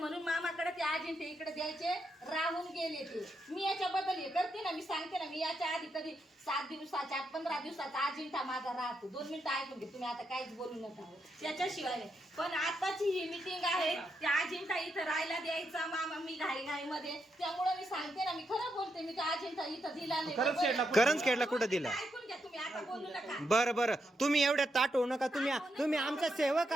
मामाकडे ते अजिंठे इकडे द्यायचे राहून गेले. ते मी याच्याबद्दल हे करते ना, मी सांगते ना, मी याच्या आधी कधी 7 दिवसाच्या 15 दिवसाचा अजिंठा माझा राहतो. 2 मिनिटं ऐकून घे, तुम्ही आता काहीच बोलू नका त्याच्याशिवाय नाही. पण आताची ही मिटिंग आहे, त्या अजिंठा इथं राहायला द्यायचा मामा, मी घाईमध्ये, त्यामुळे मी सांगते ना, मी खरं बोलते, मी त्या अजिंठा इथं दिला नाही. करंजखेडला कुठं दिला? ऐकून घ्या तुम्ही, आता बोलू नका. बरं तुम्ही एवढ्या ताट होऊ नका. तुम्ही आमचे सेवक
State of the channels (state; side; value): normal; both; correlation 0.81